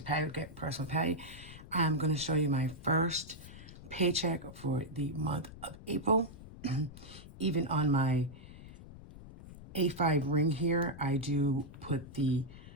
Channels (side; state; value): left; noise; rumble, 16 dB below the sound